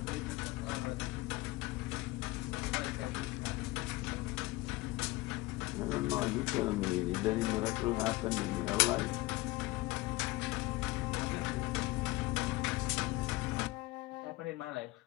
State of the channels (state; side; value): quieter; right; 20.8 dB